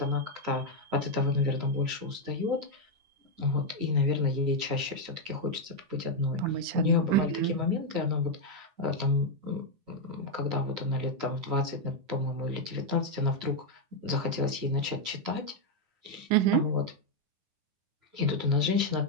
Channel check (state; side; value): late; left; 9.4 ms